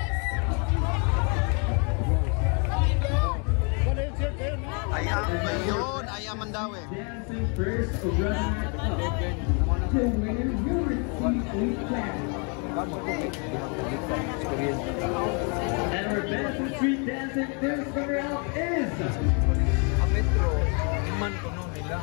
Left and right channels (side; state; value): right; quieter; 36.3 dB